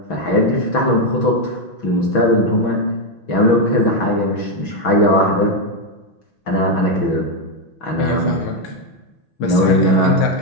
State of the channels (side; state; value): right; late; 6.1 ms